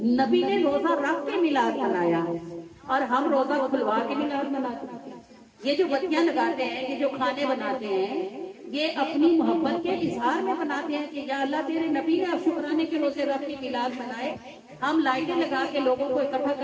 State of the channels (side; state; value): both; identical; correlation 1.00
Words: نبی نے روزہ رکھ کے میلاد منایا اور ہم روزہ کھلوا کے میلاد مناتے ہیں۔ یہ جو بتیاں لگاتے ہیں، یہ جو کھانے بناتے ہیں، یہ اپنی محبت کے اظہار میں بناتے ہیں کہ یا اللہ تیرے نبی نے اب شکرانے کے روزے رکھ کے میلاد منائے، ہم لائٹیں لگا کے لوگوں کو اکٹھا